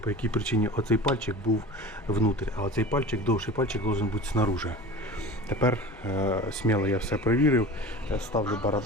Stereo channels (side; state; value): both; normal; correlation 0.35